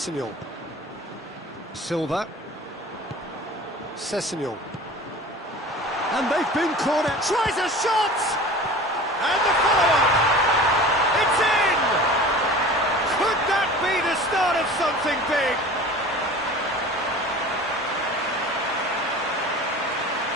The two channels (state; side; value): normal; both; correlation 0.39